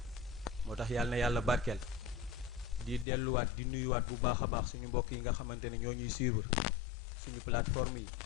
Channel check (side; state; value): right; drops out; at 3.1 s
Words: moo tax yàlla na yàlla barkeel di delluwaat di nuyuwaat bu baax a baax suñu mbokk yi nga xamante ne ñoo ñuy suivre suñu plateforme yi